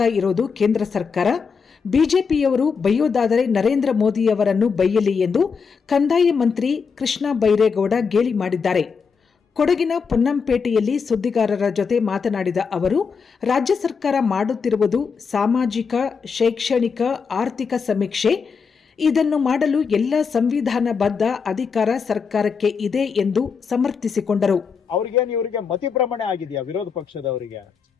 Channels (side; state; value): right; quieter; 5.6 dB